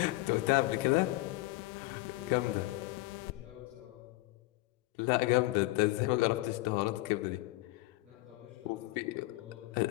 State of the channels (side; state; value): right; quieter; 19.9 dB